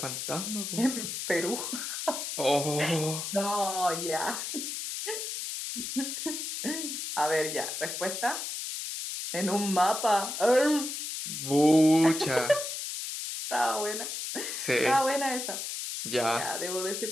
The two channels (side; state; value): left; noise; hiss, 5 dB below the sound